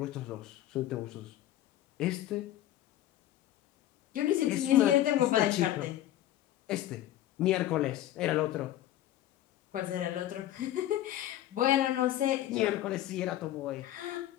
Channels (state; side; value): quieter; right; 13.3 dB